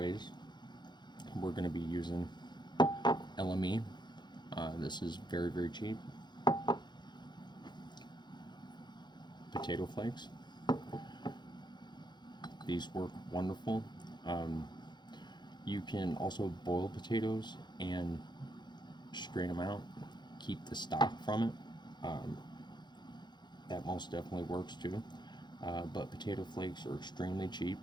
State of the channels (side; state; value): right; late; 0.21 ms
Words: we're going to be using LME. This is very cheap. Potato flakes. These work wonderful. Um, you can also boil potatoes and strain them out, keep the stock from it. Um, that most definitely works too. But potato flakes are extremely cheap.